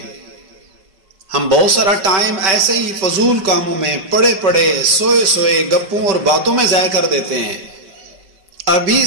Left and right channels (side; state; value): left; late; 5.2 ms